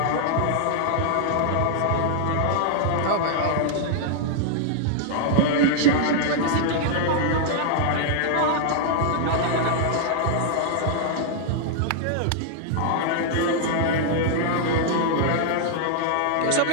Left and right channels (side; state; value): both; different; correlation -0.01